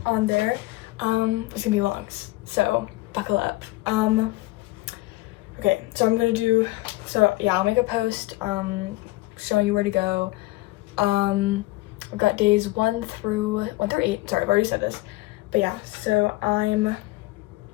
gonna be long, so buckle up. Okay, so I'll make a post showing you where to go. I've got days 1 through 8. Sorry, I've already said this. But yeah, so I'm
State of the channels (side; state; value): right; quieter; 20.2 dB